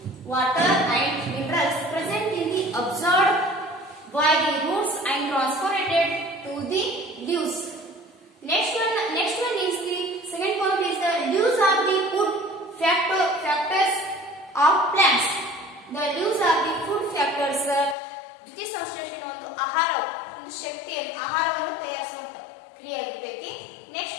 Water and minerals present in the absorbed by the roots and transported to the leaves. Next one is the second point is the leaves are the food factors of plants. The leaves are the food factors. ದ್ವಿತೀಯ ಸಂಶ್ಲೇಷಣೆ ಒಂದು ಆಹಾರ, ಒಂದು ಶಕ್ತಿಯನ್ನು ಆಹಾರವನ್ನು ತಯಾರಿಸುವಂತ ಕ್ರಿಯೆ ಆಗಿರ್ತೈತಿ.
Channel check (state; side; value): drops out; right; at 17.9 s